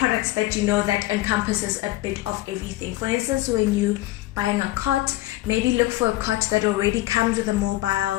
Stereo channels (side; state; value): right; quieter; 17.3 dB